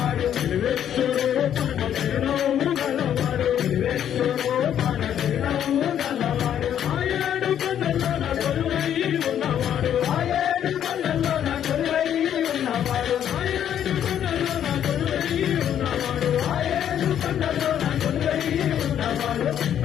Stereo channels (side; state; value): right; quieter; 9.9 dB